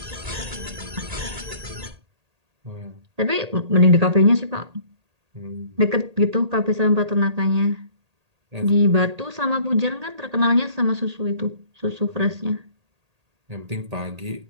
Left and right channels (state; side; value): late; left; 1.8 ms